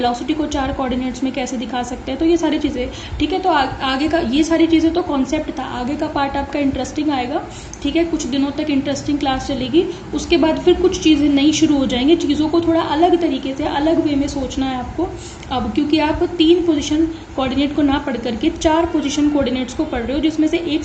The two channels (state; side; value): identical; both; correlation 1.00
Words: को 4 कोऑर्डिनेट्स में कैसे दिखा सकते हैं। तो ये सारी चीज़ें, ठीक है। तो आगे का ये सारी चीज़ें तो कॉन्सेप्ट था, आगे का पार्ट आपका इंटरेस्टिंग आएगा। ठीक है, कुछ दिनों तक इंटरेस्टिंग क्लास चलेगी, उसके बाद फिर कुछ चीज़ें नई शुरू हो जाएंगी। चीज़ों को थोड़ा अलग तरीके से, अलग वे में सोचना है आपको अब, क्योंकि आप 3 पोजिशन कोऑर्डिनेट को ना पढ़ करके 4 पोजिशन कोऑर्डिनेट्स को पढ़ रहे हो, जिसमें से एक